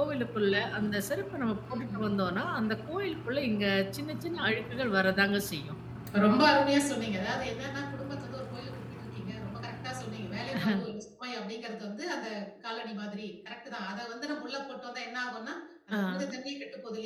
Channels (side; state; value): both; identical; correlation 1.00